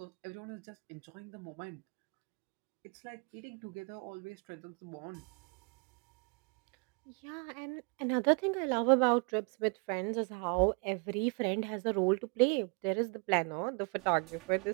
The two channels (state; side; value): quieter; left; 33.9 dB